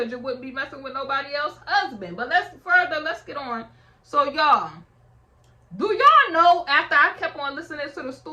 you wouldn't be messing with nobody else's husband. But let's get on. So y'all, do y'all know, after I kept on listening to the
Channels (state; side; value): identical; both; correlation 1.00